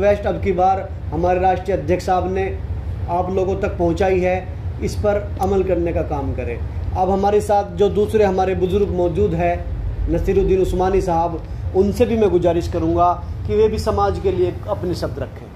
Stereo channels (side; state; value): both; identical; correlation 1.00